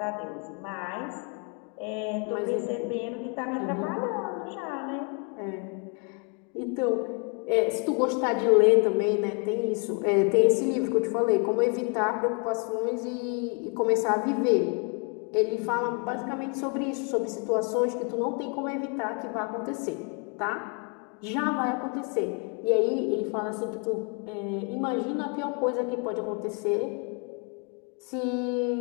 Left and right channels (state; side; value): quieter; right; 36.4 dB